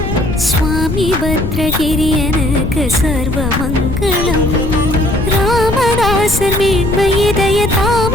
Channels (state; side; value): noise; left; rumble, 4 dB below the sound